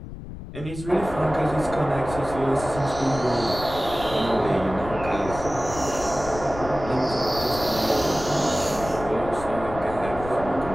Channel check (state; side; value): noise; left; rumble, 12 dB below the sound